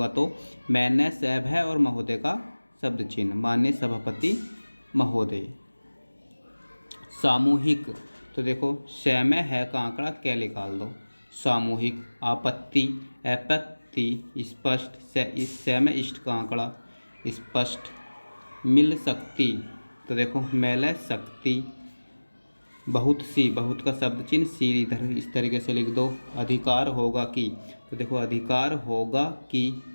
तो मैंने सैब है और महोदय का शब्द चिन्ह, माननीय सभापति महोदय। सामूहिक, तो देखो स में है का आंकड़ा क्या निकाल दो, सामूहिक। आपत्ति, आपत्ति, स्पष्ट, स में इष्ट का आंकड़ा स्पष्ट। मिल सकती, तो देखो मेले शक्ति। बहुत सी, बहुत का शब्द चिन्ह सी इधर इस तरीके से लिख दो। अधिकार होगा कि, तो देखो अधिकार होगा कि।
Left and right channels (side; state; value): both; inverted; correlation -1.00